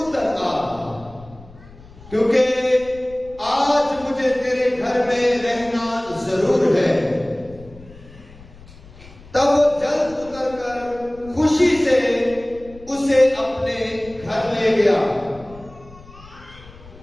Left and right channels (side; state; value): left; noise; rumble, 21 dB below the sound